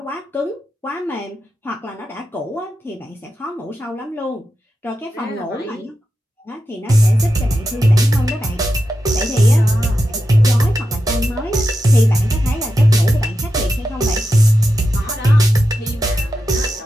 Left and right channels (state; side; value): normal; both; correlation 0.89